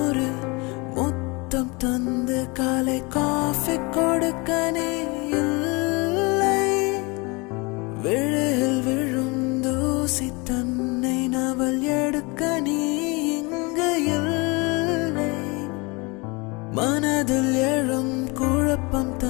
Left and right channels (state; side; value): quieter; right; 27.3 dB